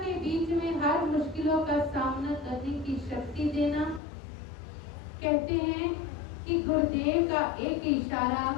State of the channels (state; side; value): drops out; right; at 4.0 s